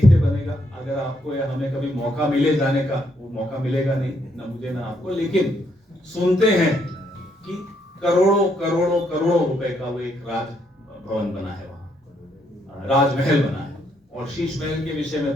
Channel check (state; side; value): normal; both; correlation 0.74